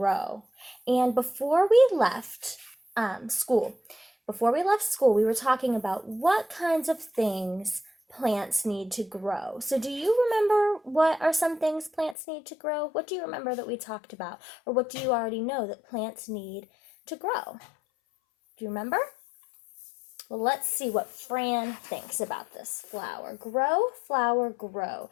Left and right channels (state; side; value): drops out; right; at 12.2 s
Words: And school, before we left school, we were talking about what kinds of things plants need to grow. So do you remember what are some things plants need to grow? What do you remember that we talked about? Or what do you already know that plants need to grow? Do you remember? Well, let's see what Fran thinks about this flower. Grow, flower, grow.